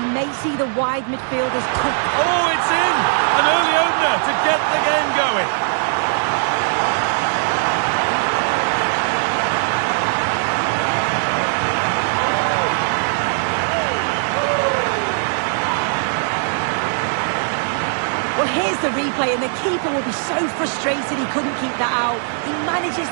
may see the wide midfielders cut. Oh, it's in! An early opener to get the game going. Well, here's the replay, and the keeper will be so frustrated he couldn't keep that out. He manages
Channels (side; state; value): left; silent; digital silence